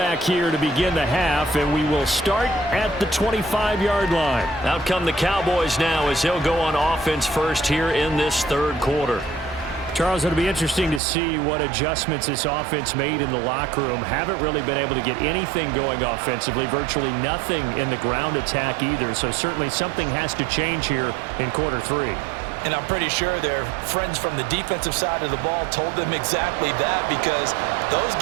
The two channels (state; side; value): drops out; left; at 11.0 s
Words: here to begin the half, and we will start at the 25-yard line. Out come the Cowboys now as they'll go on offense first here in this third quarter. Charles, it'll be interesting to see what adjustments this offense made in the locker room. Haven't really been able to get anything going offensively, virtually nothing in the ground attack either. So certainly something has to change here in quarter 3. And I'm pretty sure their friends from the defensive side of the ball told them exactly that, because those